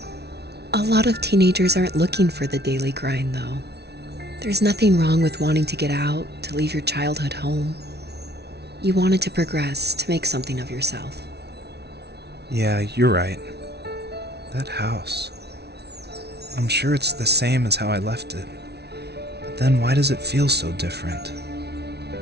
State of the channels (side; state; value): left; late; 0.49 ms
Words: A lot of teenagers aren't looking for the daily grind, though. There's nothing wrong with wanting to get out, to leave your childhood home. You wanted to progress, to make something of yourself. Yeah, you're right. That house. I'm sure it's the same as how I left it. But then why does it feel so different?